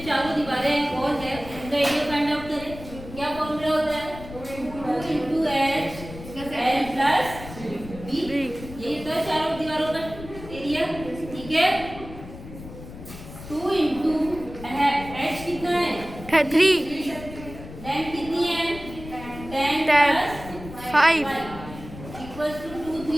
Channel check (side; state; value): left; noise; rumble, 14 dB below the sound